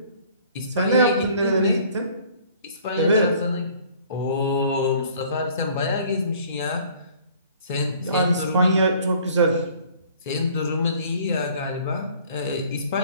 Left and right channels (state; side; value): inverted; both; correlation -0.54